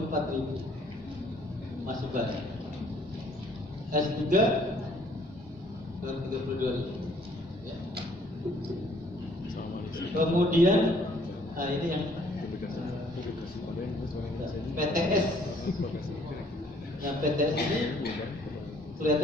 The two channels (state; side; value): normal; both; correlation 0.61